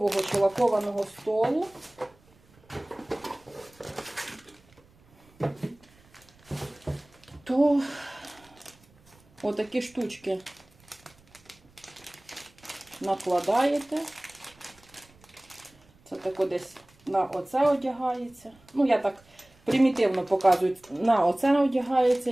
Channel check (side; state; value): right; noise; rumble, 29 dB below the sound